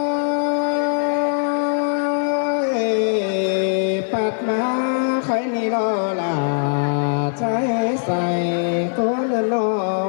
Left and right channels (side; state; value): right; silent; 65 dB below the other